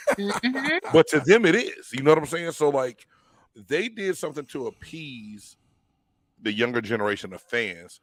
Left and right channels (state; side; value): identical; both; correlation 1.00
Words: But to them, it is. You know what I'm saying? So, like, they did something to appease the younger generation of fans